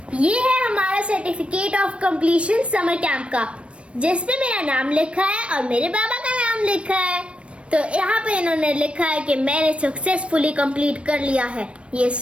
ये है हमारा certificate of completion summer camp का, जिसपे मेरा नाम लिखा है और मेरे बाबा का नाम लिखा है। तो यहाँ पे इन्होंने लिखा है कि मैंने सक्सेसफुली कंप्लीट कर लिया है ये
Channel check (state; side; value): late; left; 0.060 ms